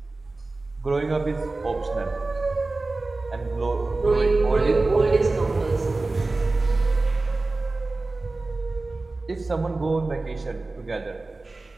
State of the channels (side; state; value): left; quieter; 3.3 dB